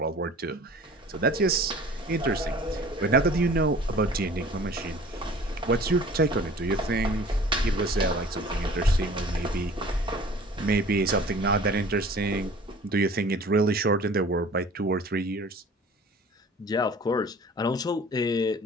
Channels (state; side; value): normal; both; correlation 0.47